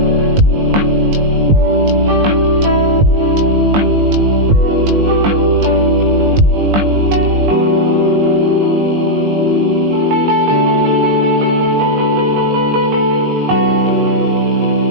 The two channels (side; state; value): left; late; 20 ms